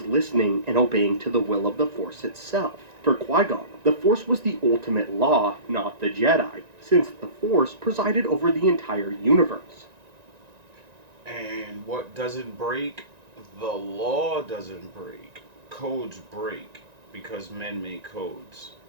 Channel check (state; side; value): late; left; 1.9 ms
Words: listening and obeying to the will of the Force itself. For Qui-Gon, the Force was the ultimate law, not the Jedi, since the Force presided over the entire universe. And what doesn't break, the law doesn't break. Codes break because men make codes.